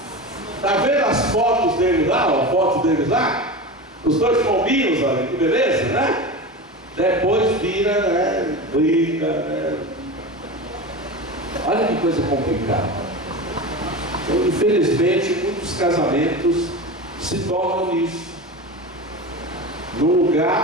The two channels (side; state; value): both; normal; correlation 0.27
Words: Está vendo as fotos deles lá? A foto deles lá? Os dois pombinhos, olha que beleza, né? Depois vira, né? Briga, né? Olha que coisa complicada. Então, infelizmente, muitos casamentos se tornam isso. Num